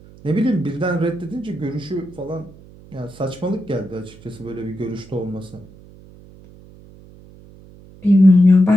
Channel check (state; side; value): noise; right; hum, 22 dB below the sound